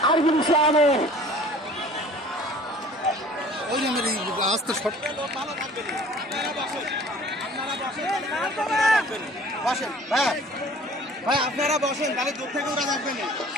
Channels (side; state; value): both; normal; correlation 0.49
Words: আরিফুল ইসলামের। আস্তে শট বসেন ভাই, ভাই আপনারা বসেন, তাহলে দূর থেকে ওরা থাকবেন।